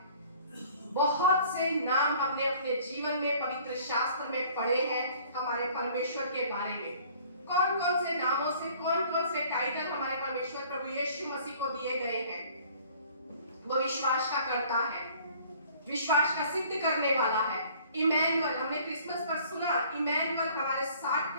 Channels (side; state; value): both; inverted; correlation -0.53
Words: बहुत से नाम हमने अपने जीवन में पवित्र शास्त्र में पढ़े हैं हमारे परमेश्वर के बारे में। कौन कौन से नामों से, कौन कौन से टाइटल हमारे परमेश्वर प्रभु यीशु मसीह को दिए गए हैं? वो विश्वास का करता है, विश्वास का सिद्ध करने वाला है। इमैनुअल, हमने क्रिसमस पर सुना, इमैनुअल हमारे साथ